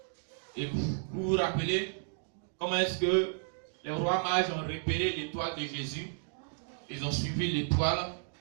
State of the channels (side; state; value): left; silent; digital silence